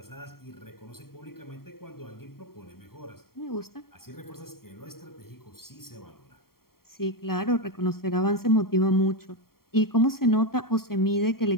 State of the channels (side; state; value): right; late; 0.93 ms